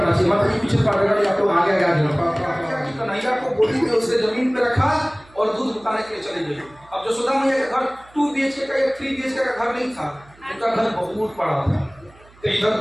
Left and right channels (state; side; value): noise; right; hum, 27 dB below the sound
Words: चाहिए। मतलब पीछे पढ़ेगा या तो आगे कन्हैया को गोदी में उसे जमीन पे रखा और दूध उतारने के लिए चले गए। अब यशोदा मैया का घर 2 BHK का या 3 BHK का घर नहीं था, उनका घर बहुत बड़ा था। तो इधर